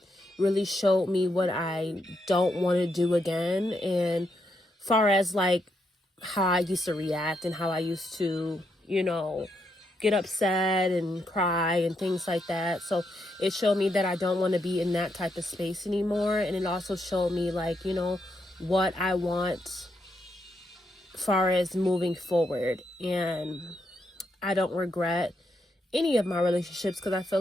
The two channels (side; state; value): both; normal; correlation 0.80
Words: really showed me what I don't want to do again. And far as how I used to react and how I used to, get upset and cry and things like that. So it showed me that I don't want to be in that type of space anymore. And it also showed me what I want far as moving forward. And I don't regret any of my relationships because I feel